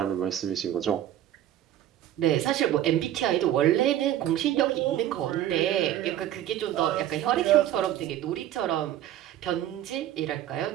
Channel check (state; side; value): quieter; left; 12.2 dB